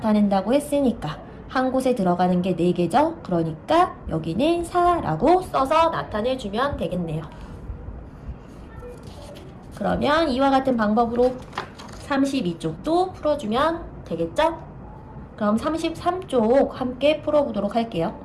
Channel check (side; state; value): both; identical; correlation 1.00